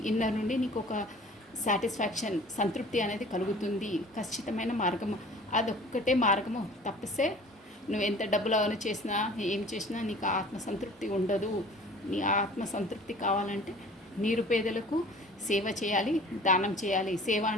ఇన్నర్ నుండి నీకు ఒక సాటిస్ఫాక్షన్ సంతృప్తి అనేది కలుగుతుంది. ఖచ్చితమైన మార్గము అదొక్కటే మార్గము. తప్పిస్తే నువ్వు ఎంత డబ్బులు అవన్నీ చేసినా ఏం చేసినా నీకు ఆత్మసంతృప్తి ఉండదు. నీ ఆత్మసంతృప్తి కావాలంటే నిరుపేదలకు సేవ చేయాలి, దానం చేయాలి. సేవ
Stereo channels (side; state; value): both; normal; correlation 0.47